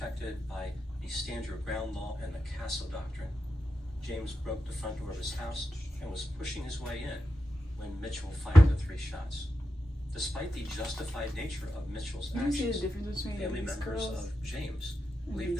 by the stand your ground law and the Castle Doctrine. James broke the front door of his house and was pushing his way in when Mitchell fired the 3 shots. Despite the justified nature of Mitchell's You see the actions, difference between family these members girls of James and believe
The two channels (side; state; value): both; normal; correlation 0.89